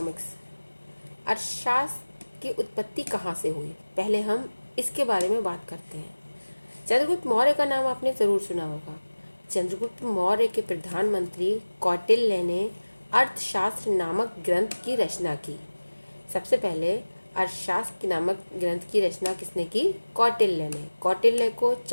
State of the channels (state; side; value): inverted; both; correlation -1.00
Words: अर्थशास्त्र की उत्पत्ति कहाँ से हुई, पहले हम इसके बारे में बात करते हैं। चंद्रगुप्त मौर्य का नाम आपने ज़रूर सुना होगा। चंद्रगुप्त मौर्य के प्रधानमंत्री कौटिल्य ने अर्थशास्त्र नामक ग्रंथ की रचना की। सबसे पहले अर्थशास्त्र नामक ग्रंथ की रचना किसने की? कौटिल्य ने। कौटिल्य को